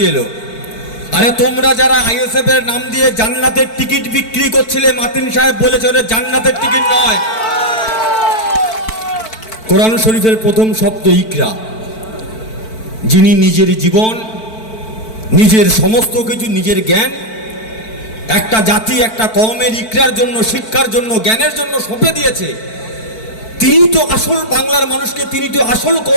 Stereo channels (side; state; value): right; late; 4.5 ms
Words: এলো? আরে তোমরা যারা আইএসএফ এর নাম দিয়ে জান্নাতের টিকিট বিক্রি করছিলে, মাতিন সাহেব বলেছে ওটা জান্নাতের টিকিট নয়। কোরআন শরীফের প্রথম শব্দ ইকরা, যিনি নিজের জীবন, নিজের সমস্ত কিছু, নিজের জ্ঞান একটা জাতি, একটা কওমের ইকরার জন্য, শিক্ষার জন্য, জ্ঞানের জন্য সঁপে দিয়েছে। তিনি তো আসল বাংলার মানুষকে, তিনি তো আসল